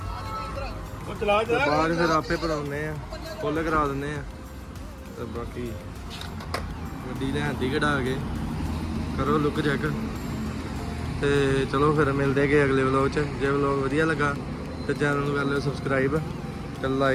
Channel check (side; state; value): both; identical; correlation 1.00